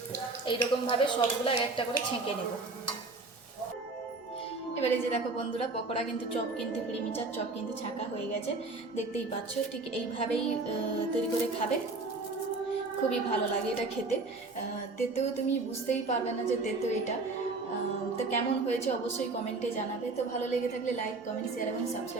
এইরকমভাবে সবগুলো এক একটা করে ছেঁকে নেব। এবারে যে দেখো বন্ধুরা, পকোড়া কিন্তু চপ কিন্তু প্রিমিচার চপ কিন্তু ছাঁকা হয়ে গেছে, দেখতেই পাচ্ছ। ঠিক এইভাবেই তৈরি করে খাবে, খুবই ভালো লাগে এটা খেতে। তেতেও তুমি বুঝতেই পারবে না যে তেতো এটা। তো কেমন হয়েছে অবশ্যই কমেন্টে জানাবে। তো ভালো লেগে থাকলে লাইক, কমেন্ট, শেয়ার এবং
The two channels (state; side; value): quieter; left; 3.5 dB